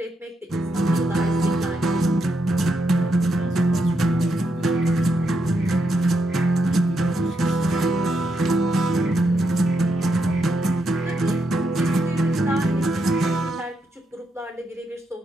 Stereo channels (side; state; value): both; normal; correlation 0.81